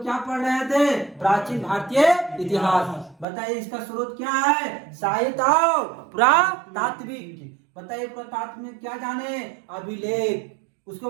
क्या पढ़ रहे थे? प्राचीन भारतीय इतिहास। बताइए इसका स्रोत क्या है? साहित्य और पुरातात्विक। बताइए पुरातात्व में क्या जाने? अभिलेख, उसके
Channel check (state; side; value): drops out; left; at 3.2 s